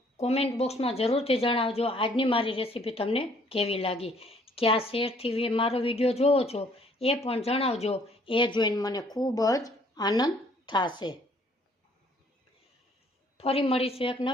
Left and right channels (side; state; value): both; normal; correlation 0.61